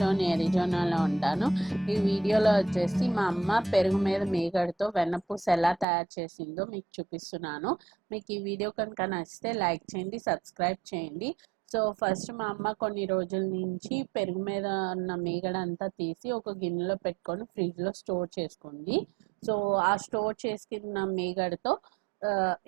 అరిజోనాలో ఉంటాను. ఈ వీడియోలో వచ్చేసి మా అమ్మ పెరుగు మీద మీగడతో వెన్నపూస ఎలా తయారు చేసిందో మీకు చూపిస్తున్నాను. మీకు ఈ వీడియో కనుక నచ్చితే లైక్ చేయండి, సబ్స్క్రైబ్ చేయండి. సో ఫస్ట్ మా అమ్మ కొన్ని రోజుల నుంచి పెరుగు మీద ఉన్న మీగడ అంతా తీసి ఒక గిన్నెలో పెట్టుకొని ఫ్రిడ్జ్లో స్టోర్ చేసుకుంది. సో ఆ స్టోర్ చేసుకున్న మీగడతో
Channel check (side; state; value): left; drops out; at 5.9 s